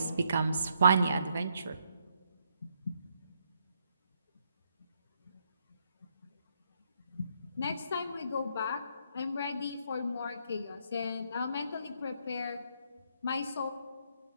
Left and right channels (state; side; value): inverted; both; correlation -0.73